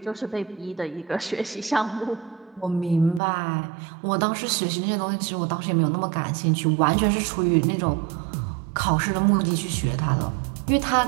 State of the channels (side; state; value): left; drops out; at 3.2 s